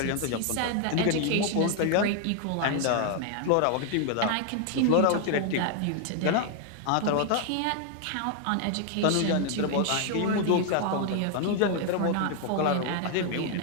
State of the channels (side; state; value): both; different; correlation 0.00